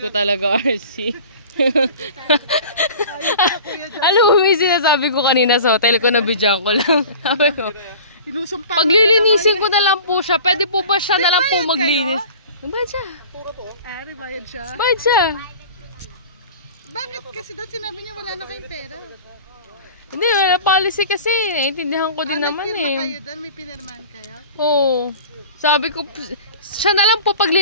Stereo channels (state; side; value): inverted; both; correlation -0.40